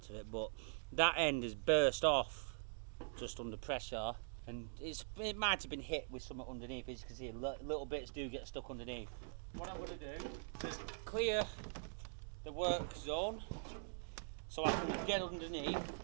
of it. But that end is burst off just under pressure, and it might have been hit with something underneath. As you can see, little bits do get stuck underneath. What I'm going to do is clear the work zone so I can get underneath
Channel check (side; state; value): left; silent; digital silence